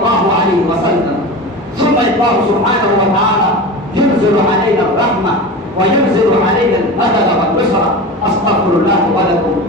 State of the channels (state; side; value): normal; both; correlation 0.29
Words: عليه وسلم. ثم الله سبحانه وتعالى ينزل علينا الرحمة وينزل علينا المدد والنصرة. أستغفر الله ولكم